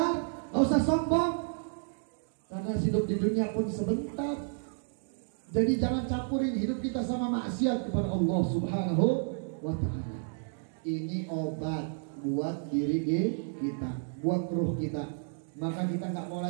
gak usah sombong. Karena hidup di dunia pun sebentar. Jadi jangan campurin hidup kita sama maksiat kepada Allah Subhanahu wa ta'ala. Ini obat buat diri kita, buat ruh kita. Maka kita nggak mau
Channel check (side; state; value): left; silent; digital silence